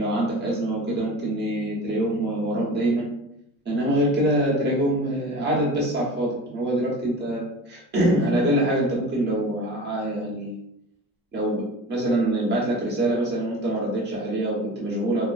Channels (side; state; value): both; normal; correlation 0.36